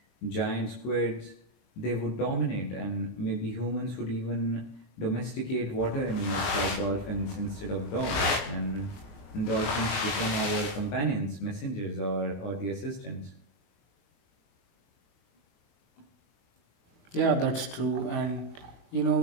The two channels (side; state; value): right; late; 21 ms